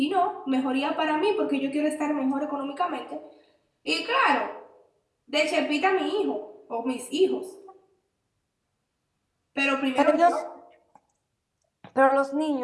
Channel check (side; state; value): both; identical; correlation 1.00